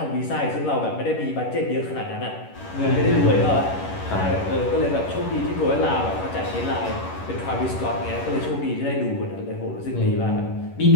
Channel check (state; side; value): late; right; 11 ms